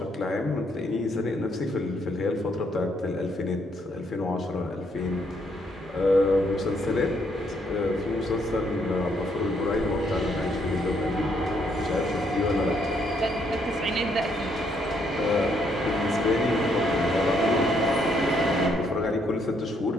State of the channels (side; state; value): both; normal; correlation 0.72